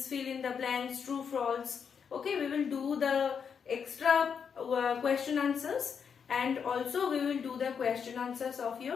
fill in the blanks, true, false. Okay, we will do the extra question answers, and also we will do the question answers of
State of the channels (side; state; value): right; quieter; 6.8 dB